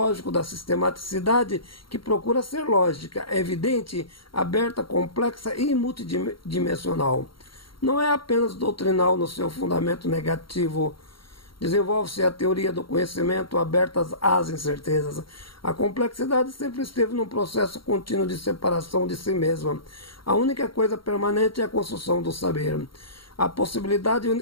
da sistematicidade, que procura ser lógica, evidente, aberta, complexa e multidimensional. Não é apenas doutrinal no seu fundamento negativo. Desenvolve-se a teoria do conhecimento aberta às incertezas. A complexidade sempre esteve num processo contínuo de separação de si mesma. A única coisa permanente é a construção do saber. A possibilidade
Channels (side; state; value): right; late; 0.73 ms